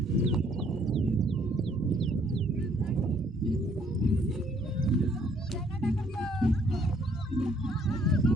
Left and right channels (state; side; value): normal; both; correlation 0.64